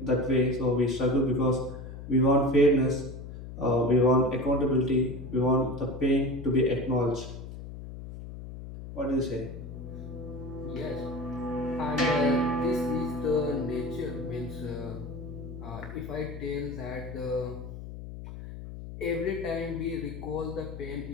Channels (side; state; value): left; noise; hum, 11 dB below the sound